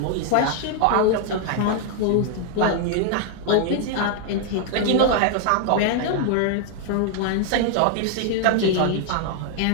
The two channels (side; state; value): both; different; correlation 0.00